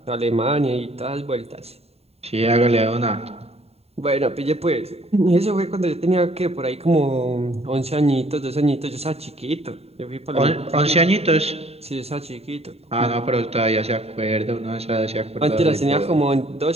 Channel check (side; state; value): left; late; 0.30 ms